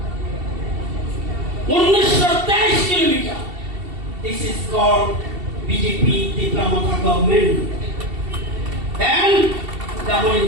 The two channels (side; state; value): left; late; 2.7 ms